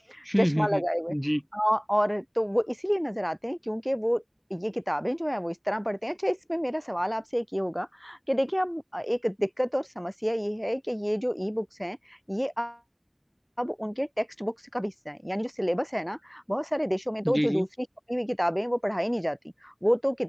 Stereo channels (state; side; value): identical; both; correlation 1.00